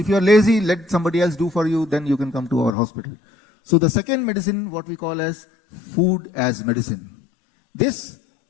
you're lazy, let somebody else do for you, then you can come to our hospital. So the second medicine, what we call as food as medicine. This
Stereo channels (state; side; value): drops out; right; at 2.8 s